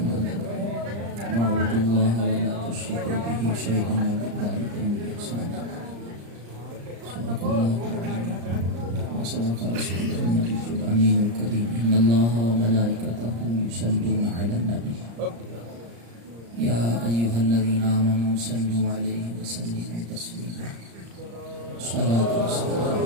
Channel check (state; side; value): late; left; 34 ms